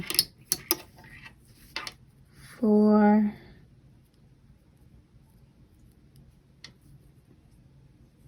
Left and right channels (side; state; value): both; identical; correlation 1.00